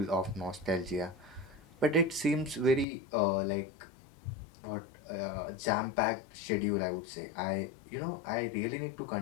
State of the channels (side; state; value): right; drops out; at 2.9 s